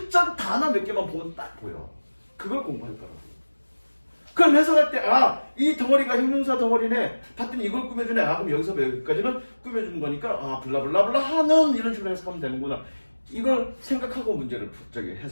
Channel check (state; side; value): inverted; both; correlation -1.00